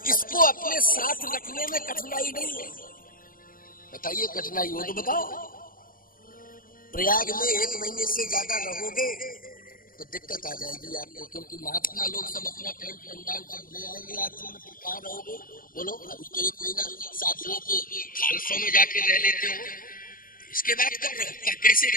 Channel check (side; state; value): right; late; 0.41 ms